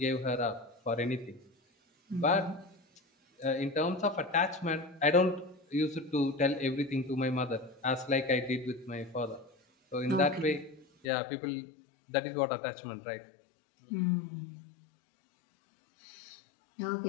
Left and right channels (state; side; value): drops out; right; at 11.1 s